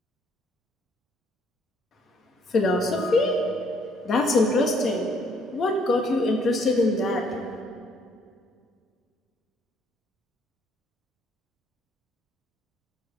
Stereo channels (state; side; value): normal; both; correlation 0.65